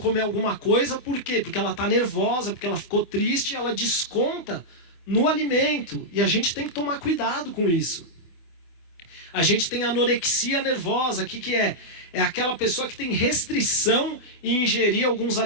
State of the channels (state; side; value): late; right; 24 ms